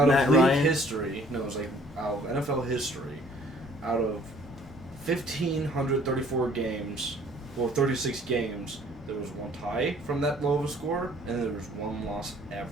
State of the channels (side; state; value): both; normal; correlation 0.57